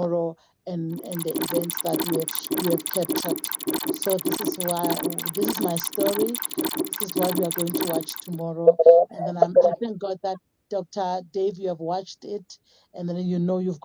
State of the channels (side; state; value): both; identical; correlation 1.00